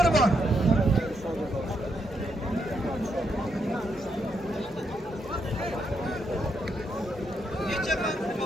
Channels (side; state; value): both; normal; correlation 0.78